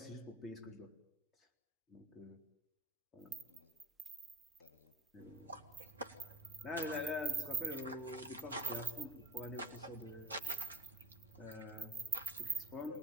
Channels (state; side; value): normal; both; correlation 0.46